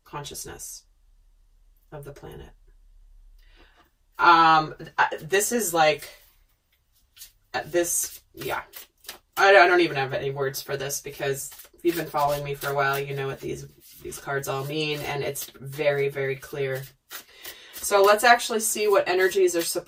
consciousness of the planet. This is like this, yeah. I don't even have any words for this, because if you've been following me for a while, you know what these cards all mean, and it's very, very clear. So let's actually see what energies are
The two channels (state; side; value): identical; both; correlation 1.00